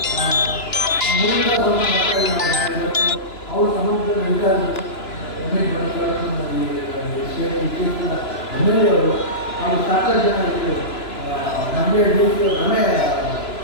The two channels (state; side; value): late; right; 3.0 ms